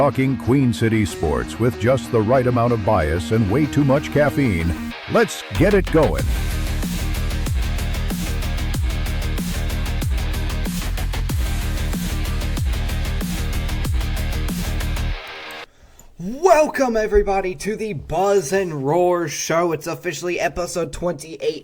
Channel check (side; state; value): both; identical; correlation 1.00